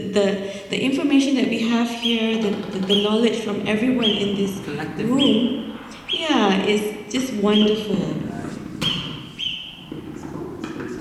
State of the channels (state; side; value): identical; both; correlation 1.00